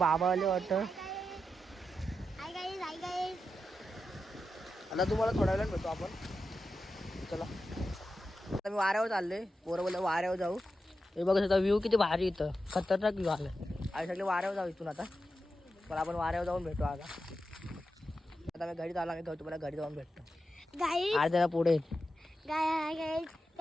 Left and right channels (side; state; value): both; normal; correlation 0.89